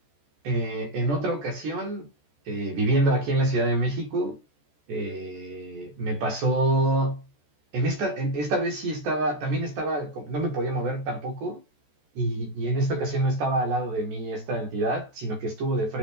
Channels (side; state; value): left; late; 14 ms